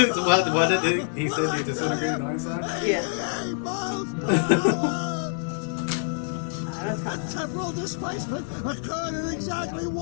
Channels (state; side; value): silent; right; digital silence